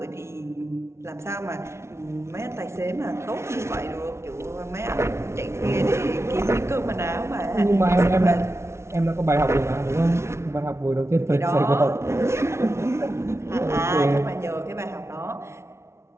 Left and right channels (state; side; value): late; left; 0.13 ms